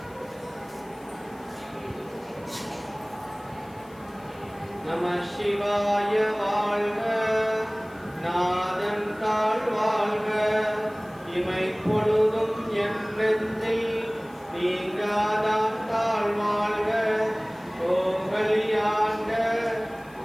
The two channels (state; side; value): noise; left; hiss, 27 dB below the sound